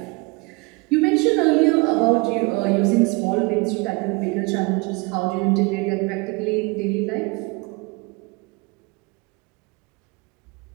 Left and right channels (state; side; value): quieter; left; 27.5 dB